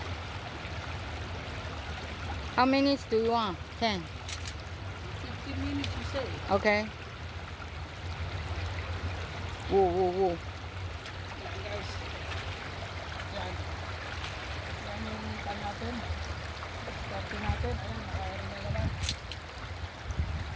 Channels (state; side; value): identical; both; correlation 1.00